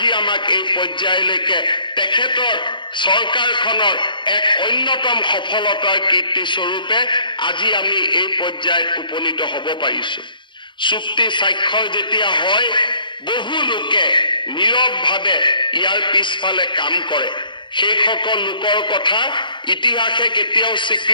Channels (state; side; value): late; right; 0.23 ms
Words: আমাক এই পৰ্যায়লৈকে তেখেতৰ চৰকাৰখনৰ এক অন্যতম সফলতাৰ কীৰ্তি স্বৰূপে আজি আমি এই পৰ্যায়ত উপনীত হ'ব পাৰিছোঁ। চুক্তি স্বাক্ষৰ যেতিয়া হয় বহু লোকে নীৰৱভাৱে ইয়াৰ পিছফালে কাম কৰে। সেইসকল লোকৰ কথা ইতিহাসে কেতিয়াও